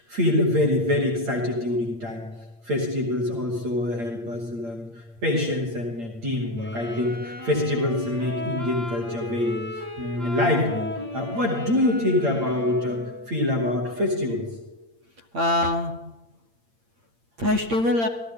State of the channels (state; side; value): late; left; 8.7 ms